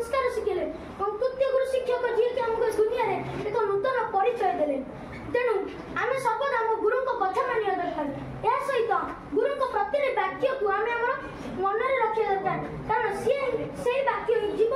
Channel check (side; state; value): both; identical; correlation 1.00